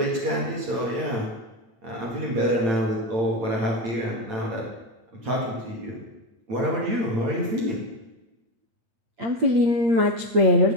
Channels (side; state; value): left; late; 8.9 ms